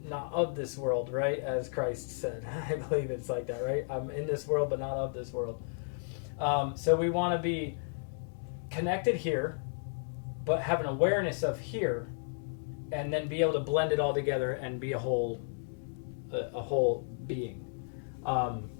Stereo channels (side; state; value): right; silent; digital silence